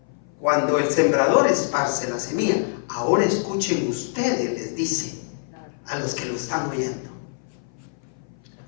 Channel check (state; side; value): silent; right; 58 dB below the other